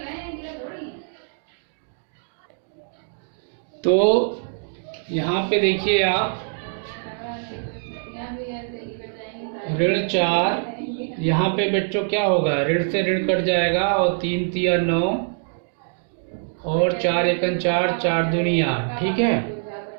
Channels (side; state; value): left; silent; digital silence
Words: तो यहाँ पे देखिए आप ऋण 4, यहाँ पे बच्चों क्या होगा, ऋण से ऋण कट जाएगा और 3 तिया 9 और 4 एकन 4, 4 दूनी 8। ठीक है,